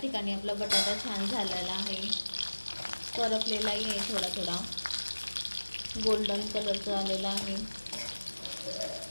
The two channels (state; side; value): inverted; both; correlation -1.00